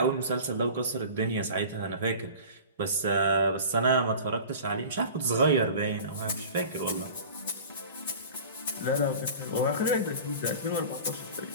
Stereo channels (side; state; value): both; inverted; correlation -0.39